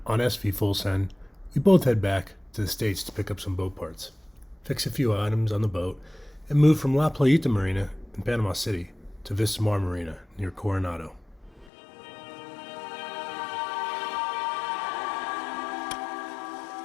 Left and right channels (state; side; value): drops out; right; at 11.7 s